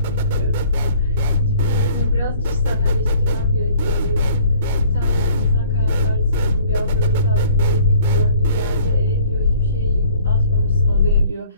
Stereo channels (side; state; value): both; inverted; correlation -0.54